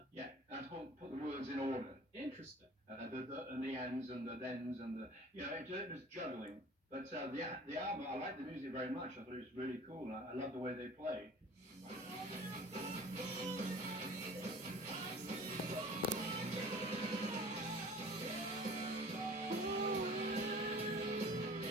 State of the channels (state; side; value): normal; both; correlation 0.45